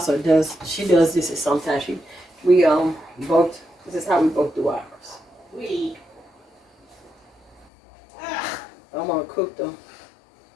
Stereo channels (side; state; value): right; drops out; at 7.7 s